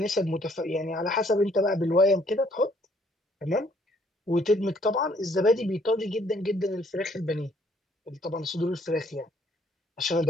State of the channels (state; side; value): normal; both; correlation 0.64